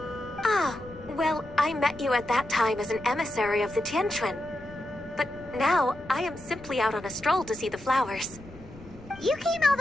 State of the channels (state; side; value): noise; left; rumble, 19 dB below the sound